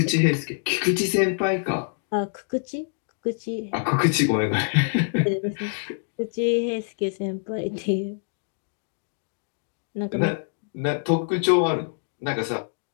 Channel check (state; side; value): silent; right; digital silence